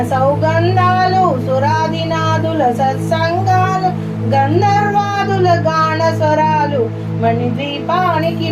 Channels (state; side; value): identical; both; correlation 1.00